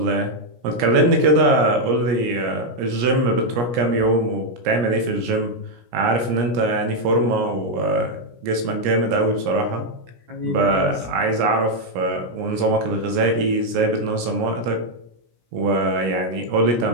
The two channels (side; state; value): left; late; 17 ms